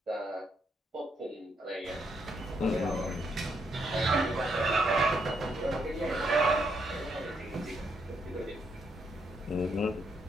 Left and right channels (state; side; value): normal; both; correlation 0.76